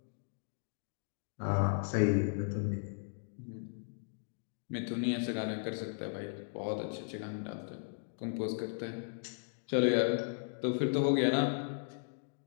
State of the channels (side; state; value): right; silent; digital silence